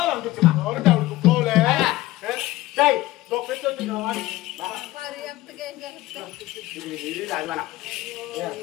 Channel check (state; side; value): quieter; right; 17.5 dB